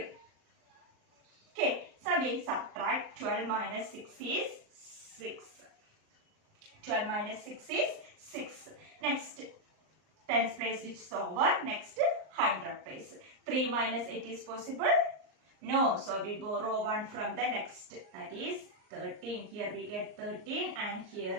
Okay. So, we subtract 12 minus 6 is 6. 12 minus 6 is 6. Next, tens place which is over. Next, 100 place. 3 minus 8 is possible? No. So, we borrow 1 from the next. That is 13. Here we get 13 and here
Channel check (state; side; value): late; left; 38 ms